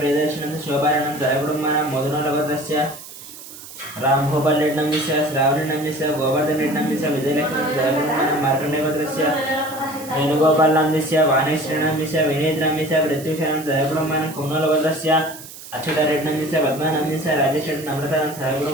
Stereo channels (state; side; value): noise; right; hiss, 15 dB below the sound